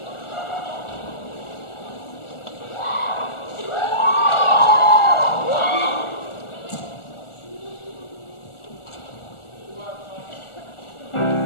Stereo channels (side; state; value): right; late; 1.4 ms